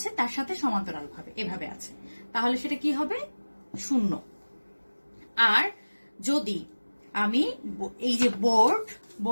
তার সাথে সমান্তরাল ভাবে, এভাবে আছে, তাহলে সেটা কি হবে? 0। আর যদি আমি এই যে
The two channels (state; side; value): inverted; both; correlation -1.00